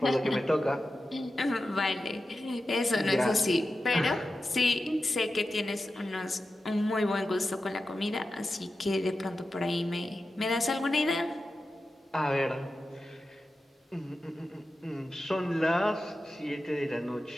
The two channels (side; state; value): both; normal; correlation 0.92